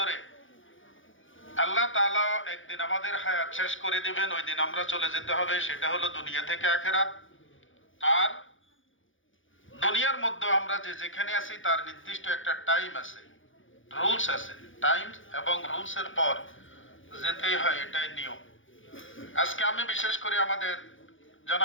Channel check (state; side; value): late; right; 0.57 ms